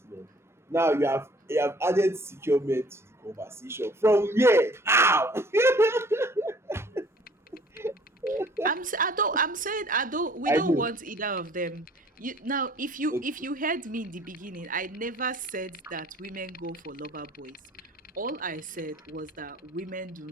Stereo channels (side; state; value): both; normal; correlation 0.54